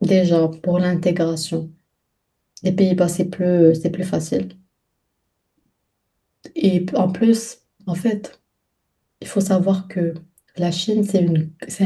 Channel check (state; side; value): identical; both; correlation 1.00